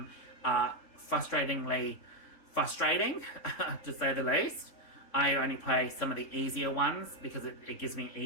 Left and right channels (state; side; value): late; right; 3.6 ms